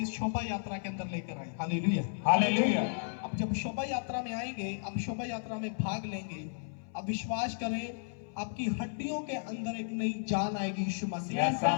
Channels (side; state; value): right; silent; 55 dB below the other